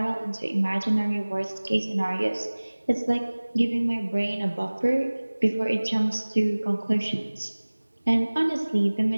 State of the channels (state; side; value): inverted; both; correlation -1.00